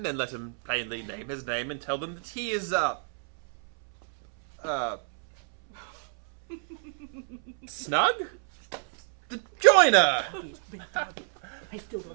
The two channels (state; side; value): silent; left; 59 dB below the other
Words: then let him plainly name his name and tell them that he is, Snug? The joiner! I still